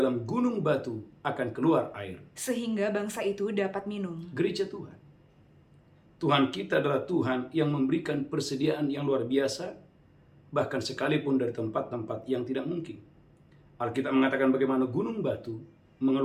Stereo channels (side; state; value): both; identical; correlation 1.00